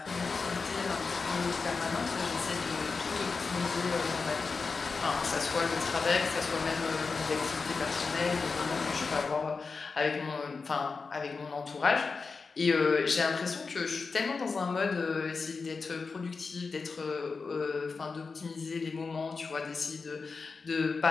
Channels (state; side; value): quieter; right; 4.6 dB